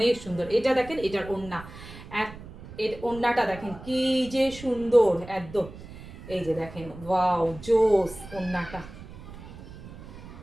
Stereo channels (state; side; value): noise; right; rumble, 15 dB below the sound